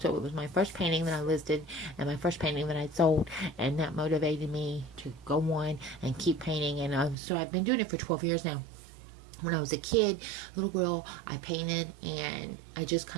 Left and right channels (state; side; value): drops out; left; at 7.2 s